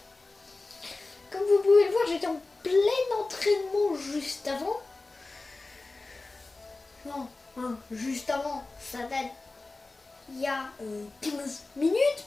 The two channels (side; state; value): right; quieter; 3.4 dB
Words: Comme vous pouvez le voir, j'étais en plein entraînement juste avant. Non, juste avant, ça date il y a 15 minutes